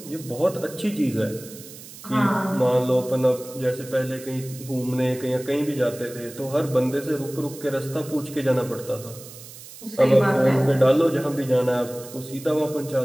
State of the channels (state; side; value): noise; right; hiss, 16 dB below the sound